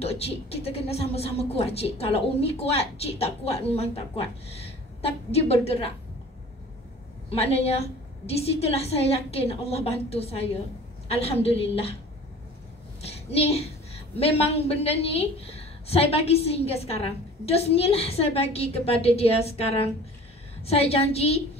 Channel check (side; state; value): both; normal; correlation 0.45